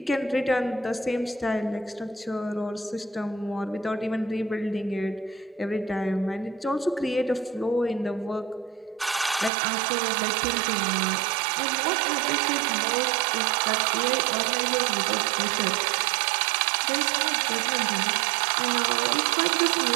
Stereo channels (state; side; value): drops out; left; at 9.5 s